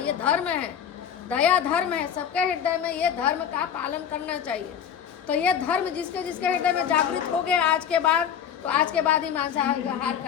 धर्म है, दया धर्म है। सबके हृदय में ये धर्म का पालन करना चाहिए। तो ये धर्म जिसके हृदय में जागृत हो गया आज के बाद, तो आज के बाद ही मांसाहार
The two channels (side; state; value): right; quieter; 8.5 dB